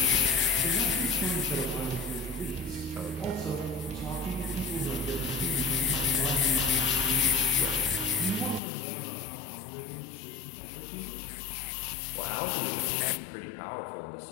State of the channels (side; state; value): right; drops out; at 8.6 s